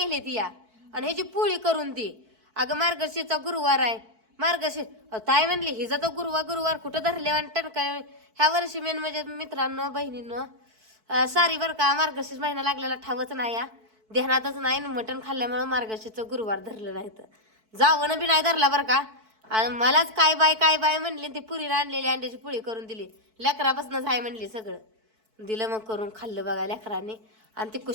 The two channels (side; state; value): left; late; 4.6 ms